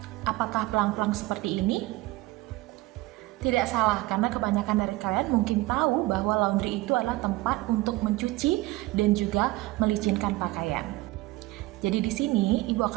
Apakah pelang-pelang seperti ini? Tidak salah, karena kebanyakan dari kalian mungkin tahu bahwa laundry itu adalah tempat untuk mencuci dan juga melicinkan pakaian. Jadi di sini Ibu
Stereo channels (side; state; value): left; quieter; 19.6 dB